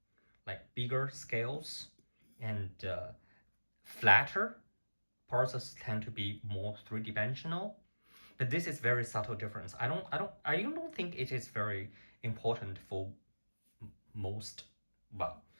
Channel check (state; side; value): inverted; both; correlation -1.00